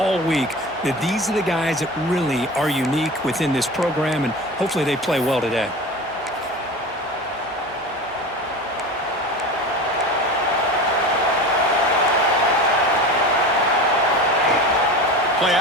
week that these are the guys that really are unique within this program, and hopefully they play well today. Play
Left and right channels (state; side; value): normal; both; correlation 0.32